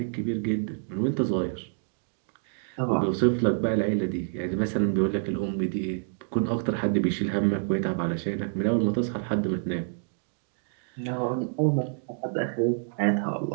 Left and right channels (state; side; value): silent; left; digital silence